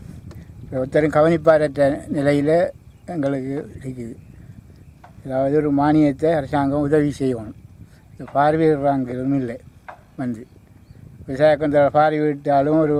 ஒருத்தரும் கவனிப்பாரற்ற நிலையில் எங்களுக்கு இருக்குது. அதாவது ஒரு மானியத்தை அரசாங்கம் உதவி செய்யணும். இந்த பார்வையிடுறாங்கிறதும் இல்லை. வந்து விவசாயத்தில் பார்வையிட்டாலும் ஒரு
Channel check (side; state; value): both; identical; correlation 1.00